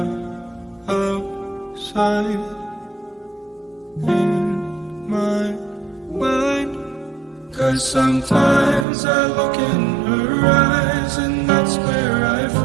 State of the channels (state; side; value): drops out; left; at 8.8 s